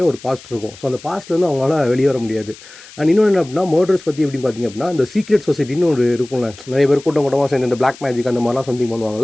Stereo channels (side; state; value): left; noise; hiss, 20 dB below the sound